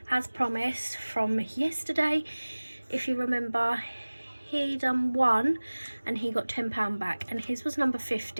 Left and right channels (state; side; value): inverted; both; correlation -1.00